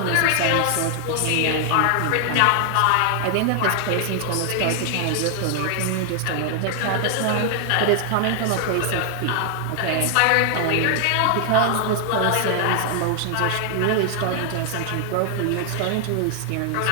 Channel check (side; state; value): both; different; correlation 0.00